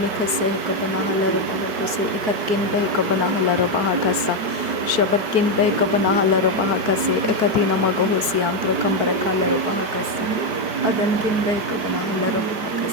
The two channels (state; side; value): late; left; 4.5 ms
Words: kabana halar bahakase ekatkin be kabana halar bahakasa shabatkin be kabana halar bahakase ekatina magohosi antra kambara kalar bahakasa adankin be kabana halar